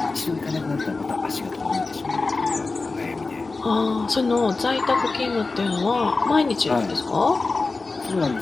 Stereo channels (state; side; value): quieter; right; 3.8 dB